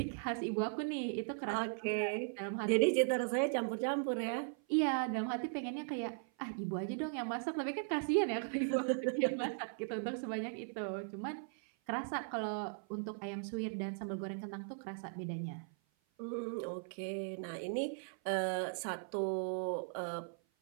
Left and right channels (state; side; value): silent; left; 52 dB below the other